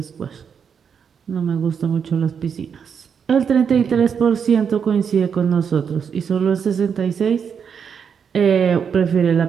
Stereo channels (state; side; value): quieter; left; 7.0 dB